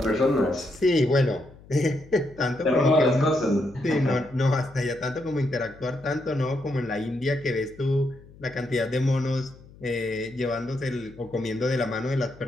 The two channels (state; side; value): noise; left; hum, 22 dB below the sound